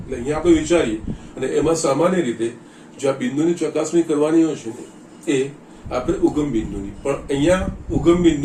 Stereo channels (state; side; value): identical; both; correlation 1.00